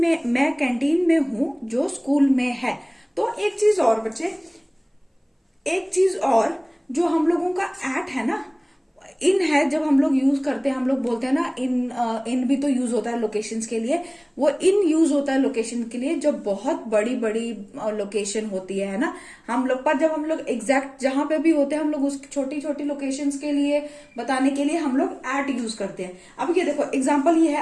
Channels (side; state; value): both; identical; correlation 1.00